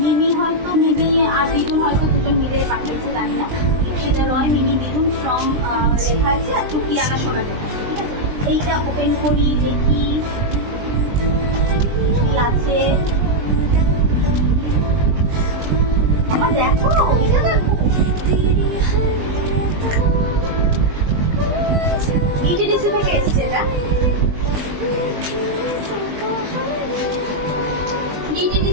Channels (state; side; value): late; left; 20 ms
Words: আর দিদুন হয়তো দুজন মিলে পাঠিয়েছে, জানি না। ইপসিতা রয়, মিমি, দিদুন ফ্রম লেখা আছে, আর টুকিয়ানা সোনা লেখা আছে। এইটা ওপেন করি, দেখি কি আছে। আমার দেখো, এটা দেখো, ইটিডিসি থেকে এসছে। এটা